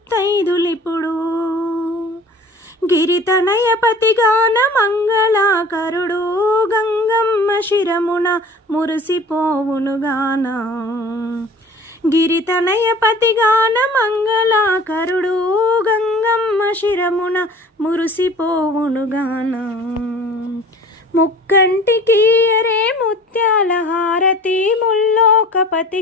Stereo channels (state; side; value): normal; both; correlation 0.45